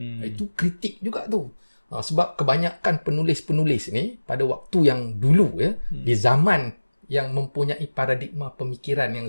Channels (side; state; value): both; inverted; correlation -1.00